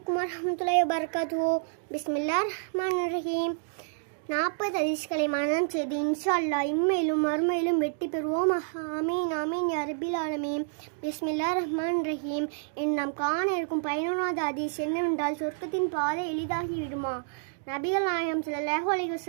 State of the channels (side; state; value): left; silent; digital silence